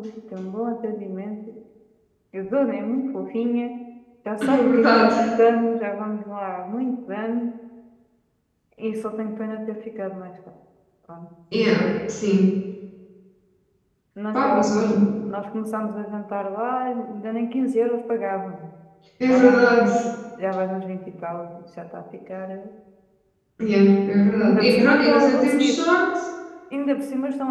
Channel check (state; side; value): identical; both; correlation 1.00